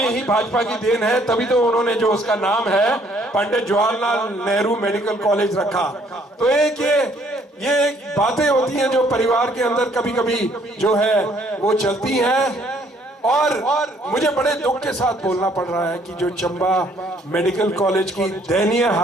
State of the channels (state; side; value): normal; both; correlation 0.64